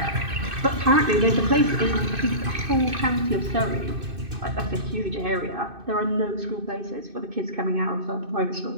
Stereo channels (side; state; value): left; late; 2.6 ms